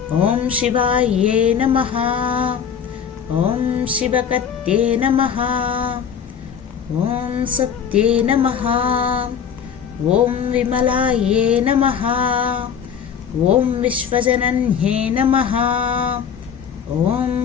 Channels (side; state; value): right; quieter; 7.6 dB